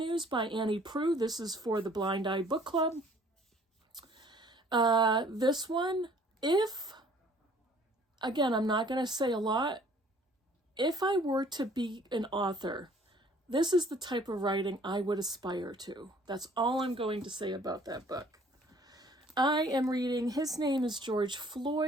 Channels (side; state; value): both; normal; correlation 0.56